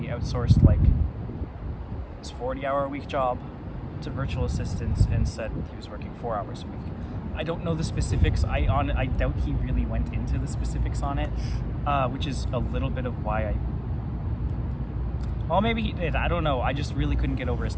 outsourced his 40-hour-a-week job to virtual assistants and said he was working 4 hours a week. I don't know the specifics. I doubt he really went into the specifics on it, which is a little bit of why well, maybe he did. I don't know. I just really couldn't get over his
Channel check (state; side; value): identical; both; correlation 1.00